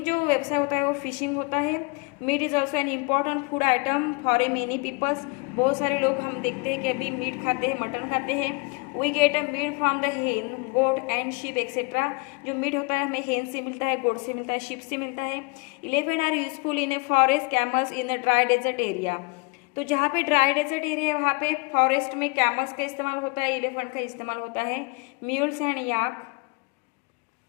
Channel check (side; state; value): right; quieter; 29.0 dB